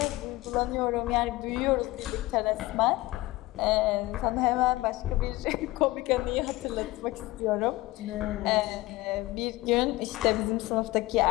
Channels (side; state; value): right; quieter; 19.2 dB